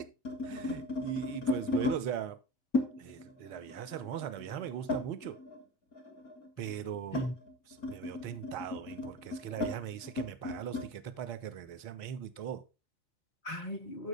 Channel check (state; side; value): late; right; 4.3 ms